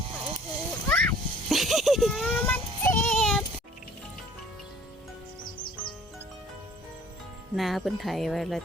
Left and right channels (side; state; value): both; normal; correlation 0.54